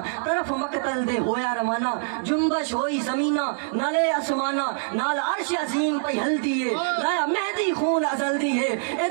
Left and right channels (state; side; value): silent; left; digital silence